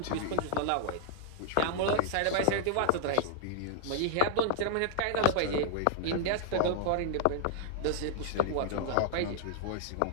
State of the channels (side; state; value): both; different; correlation -0.01